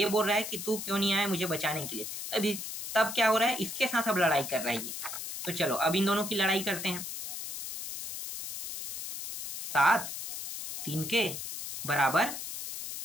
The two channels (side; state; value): left; noise; hiss, 7 dB below the sound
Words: बोल रहा है कि तू क्यों नहीं आया मुझे बचाने के लिए। तब क्या हो रहा है, इसके साथ अब लड़ाई कर रहा है ये। तो चलो अब इन दोनों की लड़ाई करते हैं। 7 3k बराबर,